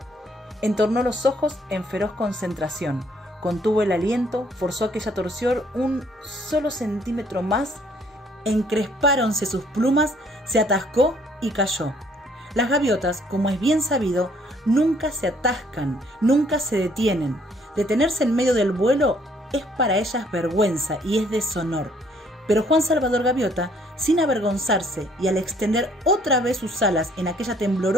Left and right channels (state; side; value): normal; both; correlation 0.63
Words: Entornó los ojos en feroz concentración, contuvo el aliento, forzó aquella torsión un solo centímetro más, encrespáronse sus plumas, se atascó y cayó. Las gaviotas, como es bien sabido, nunca se atascan, nunca se detienen. Detenerse en medio del vuelo es para ellas vergüenza y es deshonor. Pero Juan Salvador Gaviota, sin avergonzarse y al extender otra vez sus alas en aquella